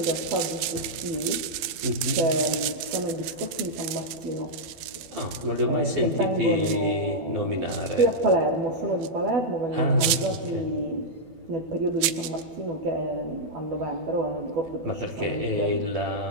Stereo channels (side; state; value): left; late; 12 ms